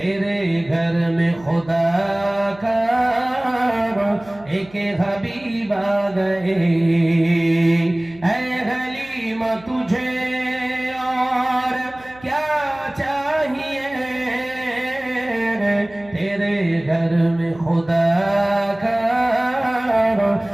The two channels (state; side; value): noise; right; hum, 23 dB below the sound